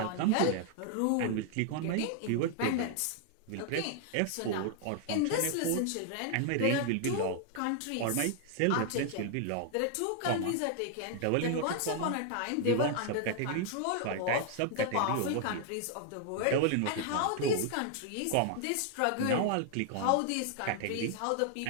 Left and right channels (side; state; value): both; different; correlation 0.00